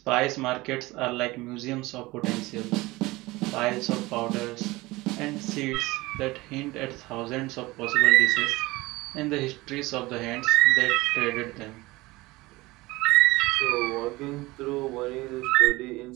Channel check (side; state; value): left; quieter; 20.8 dB